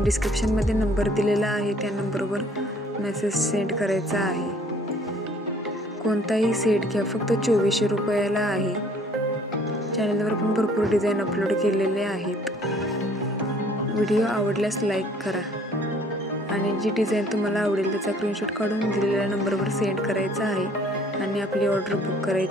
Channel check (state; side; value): normal; both; correlation 0.57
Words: डिस्क्रिप्शनमध्ये नंबर दिलेला आहे, त्या नंबरवर मेसेज सेंड करायचा आहे। कोणताही सेट घ्या, फक्त 2400 रुपयाला आहे। चॅनलवर पण भरपूर डिझाईन अपलोड केलेले आहेत। व्हिडिओ आवडल्यास लाईक करा आणि जी डिझाईन तुम्हाला आवडेल त्याचा स्क्रीनशॉट काढून दिलेल्या नंबरवर सेंड करायचा आहे आणि आपली ऑर्डर बुक